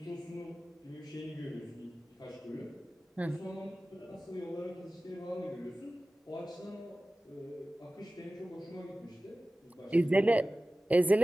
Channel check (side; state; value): both; normal; correlation 0.96